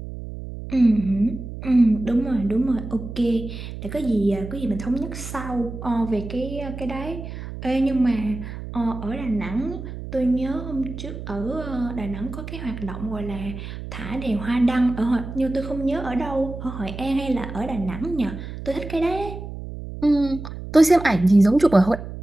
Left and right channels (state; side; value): noise; right; hum, 9 dB below the sound